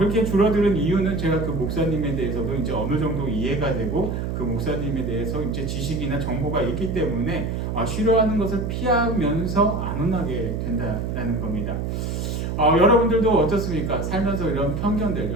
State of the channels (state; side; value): noise; right; hum, 2 dB below the sound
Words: 줄어드는 이유는 제가 그 목사님에 대해서도 이제 어느 정도 이해가 되고 그 목사님에 대해서 이제 지식이나 정보가 있기 때문에 싫어하는 것을 피하면서 안 혼나게 된다는 겁니다. 여러분들도 어떻습니까? 살면서 이런 편견들,